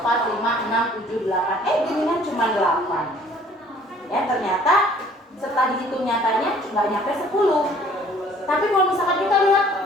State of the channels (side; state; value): both; normal; correlation 0.55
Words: 5, 6, 7, 8. Ginian cuma 8. Ya, ternyata setelah dihitung nyatanya nggak nyampe 10. Tapi kalau misalkan kita